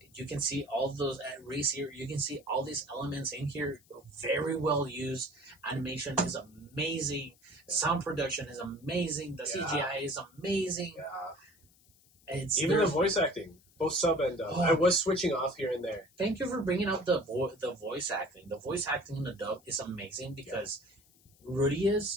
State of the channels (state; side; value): noise; left; hiss, 30 dB below the sound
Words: you can see all those race here. You can see all these elements in here, very well used. Animation is amazing. Sound production is amazing. The CGI is amazing. It's even the voice acting, both sub and dub. I was switching off here and there. Thank you for bringing up the voice acting. The voice acting in the dub is amazing because